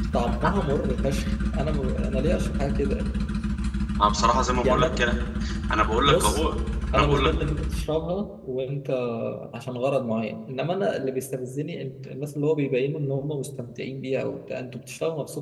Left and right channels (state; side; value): identical; both; correlation 1.00